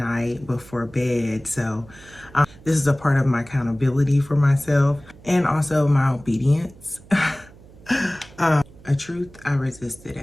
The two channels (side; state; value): right; noise; hum, 22 dB below the sound